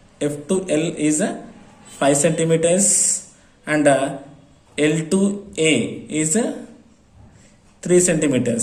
F to L is 5 centimeters and L to A is 3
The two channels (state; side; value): identical; both; correlation 1.00